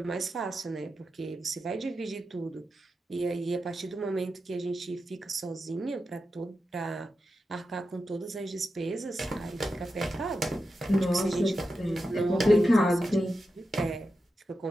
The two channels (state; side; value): normal; both; correlation 0.89